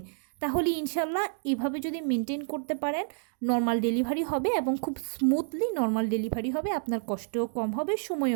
তাহলে ইনশাল্লাহ এভাবে যদি মেনটেন করতে পারেন নর্মাল ডেলিভারি হবে এবং খুব স্মুথলি নর্মাল ডেলিভারি হবে, আপনার কষ্টও কম হবে,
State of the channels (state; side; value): silent; left; digital silence